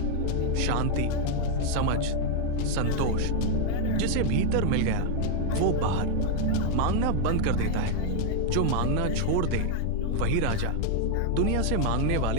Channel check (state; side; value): different; both; correlation 0.00